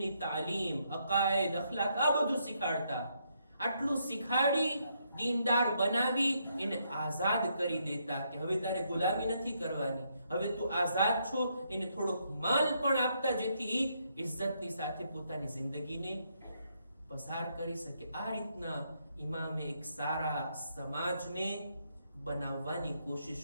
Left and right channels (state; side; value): inverted; both; correlation -0.76